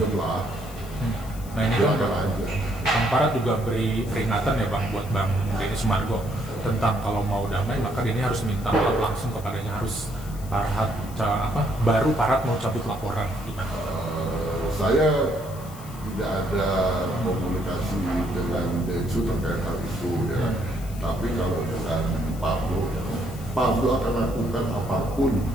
lah. Nah ini Dia kan akan aja. Bang Farhat juga beri peringatan ya Bang buat Bang Denny Sumargo tentang kalau mau damai maka Denny harus minta maaf langsung kepadanya, harus baru Farhat mau cabut laporan gimana? Saya tidak ada komunikasi dengan Densu terkait hal itu ya. Tapi kalau dengan Pablo akan lakukan apapun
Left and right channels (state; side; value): noise; left; hiss, 19 dB below the sound